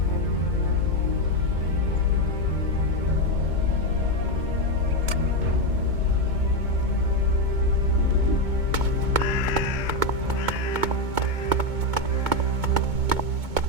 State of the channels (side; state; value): left; late; 2.2 ms